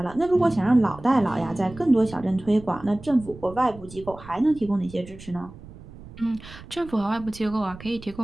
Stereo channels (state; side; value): noise; right; rumble, 17 dB below the sound